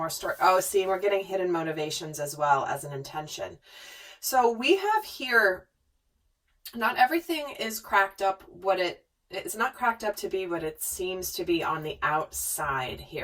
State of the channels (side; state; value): both; identical; correlation 1.00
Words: story. Oh, see, we're getting hidden motivations as well as an intention. So we have here, not everything is cracked up it's not cracked up to be what it seems to be on the outside